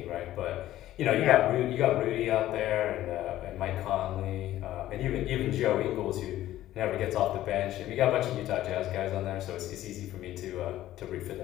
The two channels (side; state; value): right; quieter; 14.0 dB